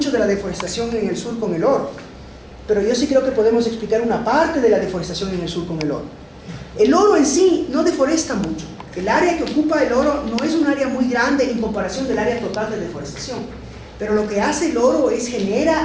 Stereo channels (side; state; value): both; identical; correlation 1.00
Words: de la deforestación en el sur con el oro, pero yo sí creo que podemos explicar una parte de la deforestación en el sur con el oro. El oro en sí no deforesta mucho. El área que ocupa el oro no es un área muy grande en comparación del área total de deforestación. Pero lo que hace el oro es